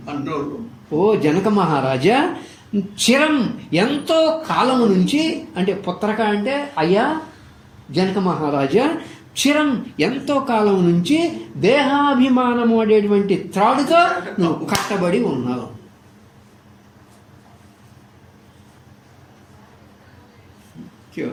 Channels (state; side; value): identical; both; correlation 1.00